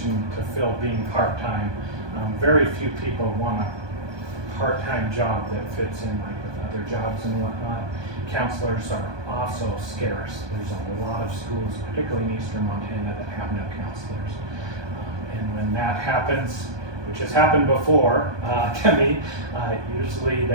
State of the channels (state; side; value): late; left; 1.2 ms